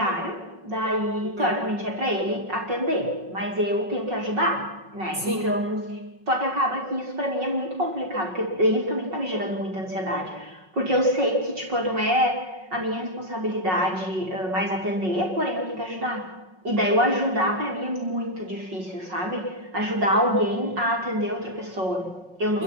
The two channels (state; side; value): late; left; 5.4 ms